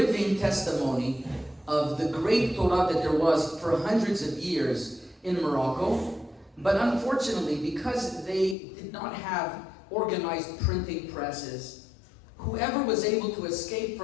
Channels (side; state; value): right; drops out; at 8.6 s